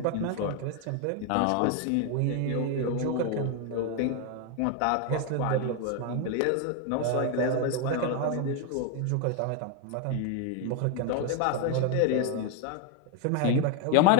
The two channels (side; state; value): both; different; correlation 0.01